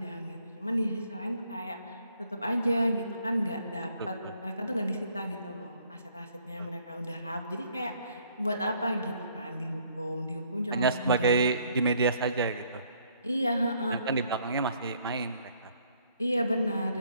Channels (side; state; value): both; inverted; correlation -0.65